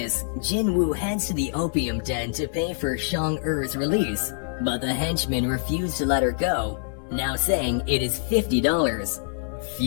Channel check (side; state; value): right; silent; digital silence